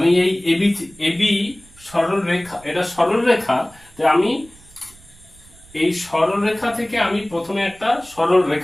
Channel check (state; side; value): noise; right; rumble, 25 dB below the sound